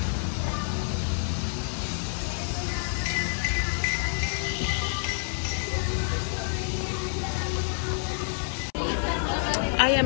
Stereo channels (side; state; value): right; silent; 59 dB below the other